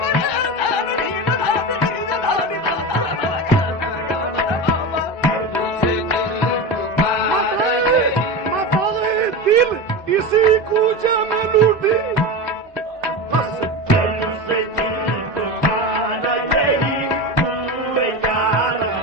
यही मताए दिल इसी कूचे में लूटी, बस पहलू से दिल तुम्हारा यही तू याद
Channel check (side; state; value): both; normal; correlation 0.23